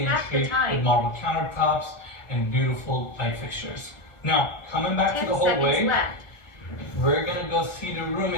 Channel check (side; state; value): right; late; 1.5 ms